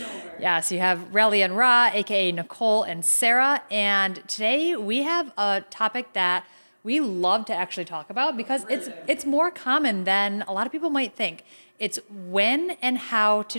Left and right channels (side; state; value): both; inverted; correlation -1.00